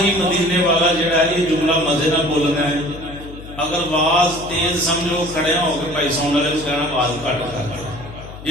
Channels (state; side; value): noise; left; hum, 15 dB below the sound